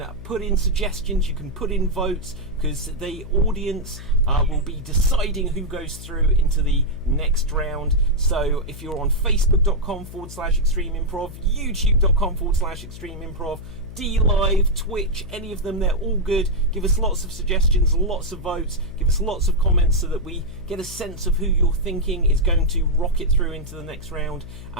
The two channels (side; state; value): left; noise; hum, 13 dB below the sound